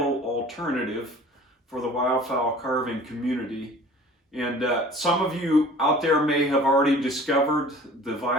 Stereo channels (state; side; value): normal; both; correlation 0.46